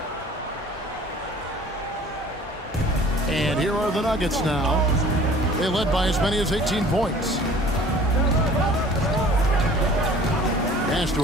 And here are the Nuggets now. They led by as many as 18 points. Pass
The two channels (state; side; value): normal; both; correlation 0.49